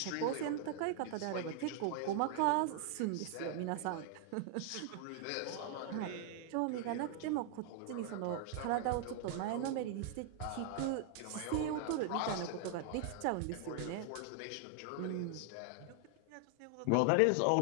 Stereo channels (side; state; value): both; different; correlation 0.00